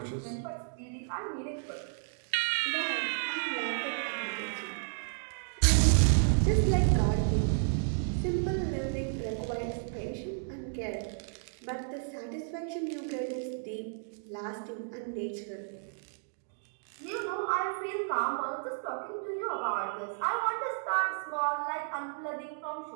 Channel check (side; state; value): left; silent; digital silence